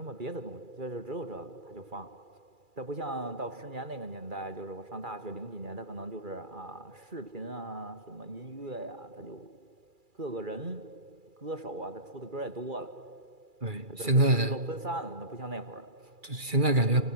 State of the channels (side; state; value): left; late; 2.3 ms